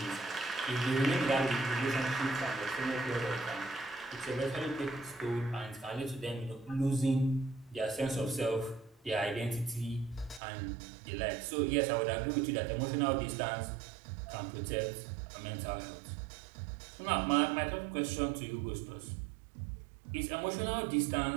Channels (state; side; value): drops out; left; at 10.4 s